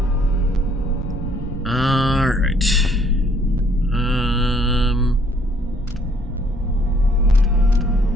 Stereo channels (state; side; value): normal; both; correlation 0.63